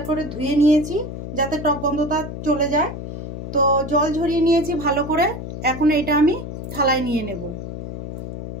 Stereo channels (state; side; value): noise; left; hum, 8 dB below the sound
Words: করে ধুয়ে নিয়েছি যাতে টক গন্ধটা চলে যায়। তো জল ঝরিয়ে নিয়েছি ভালো করে। এখন এটা আমি থালায় নিয়ে নেব।